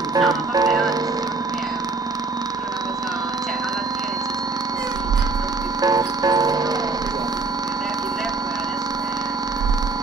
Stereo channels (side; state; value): left; quieter; 3.8 dB